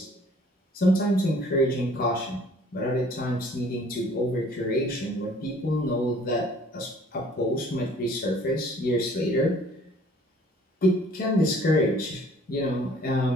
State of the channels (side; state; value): both; normal; correlation 0.55